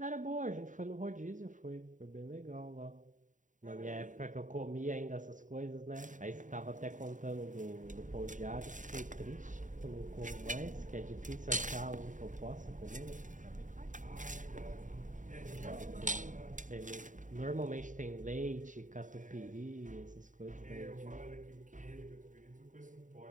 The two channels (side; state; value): left; late; 0.37 ms